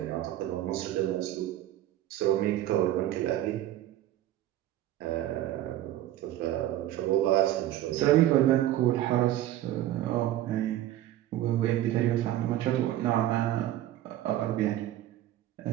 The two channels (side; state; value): left; quieter; 13.6 dB